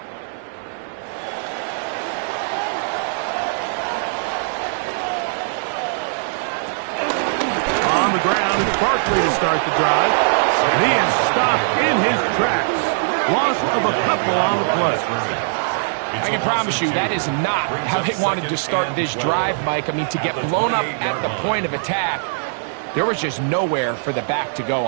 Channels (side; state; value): left; silent; digital silence